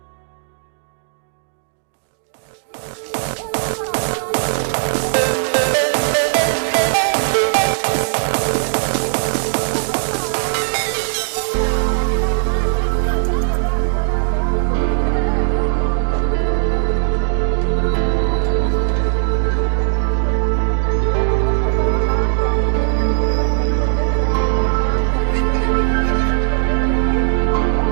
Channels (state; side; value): silent; left; digital silence